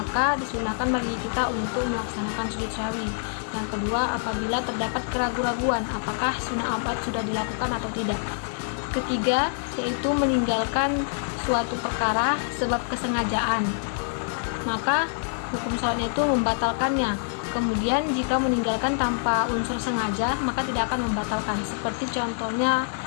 disunahkan bagi kita untuk melaksanakan sujud syahwi. Yang kedua, apabila terdapat keraguan-raguan apakah sunnah abad sudah dilakukan atau tidak. Ketiga, yaitu meninggalkan suatu perkara sebab kesengajaan, maka hukum sholatnya itu membatalkannya. Kemudian jika meninggalkan tanpa unsur sengaja maka tidak akan membatalkan, seperti contohnya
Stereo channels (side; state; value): right; silent; digital silence